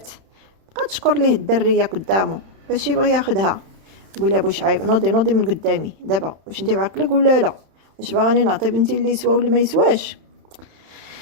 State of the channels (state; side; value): late; left; 31 ms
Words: بقى تشكر ليه الدريه قدامه باش يبغي ياخدها. تقول لها واش عيب نوضي من قدامي دابا، واش انت بعقلك ولا لا؟ واش باغاني نعطي بنتي اللي يسوى ولا ما يسواش؟